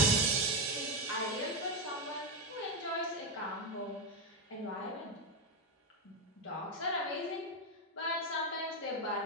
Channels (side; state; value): both; normal; correlation 0.07